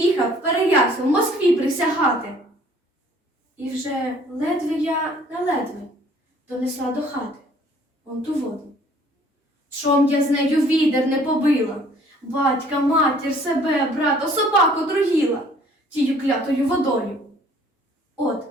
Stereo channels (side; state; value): both; normal; correlation 0.56